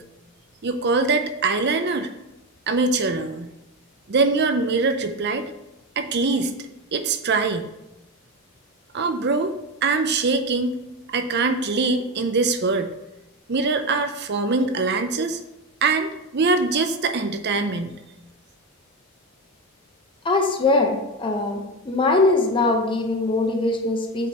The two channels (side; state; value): both; normal; correlation 0.15